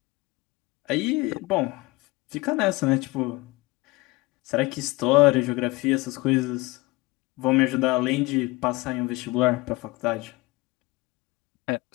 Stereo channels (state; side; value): quieter; right; 22.2 dB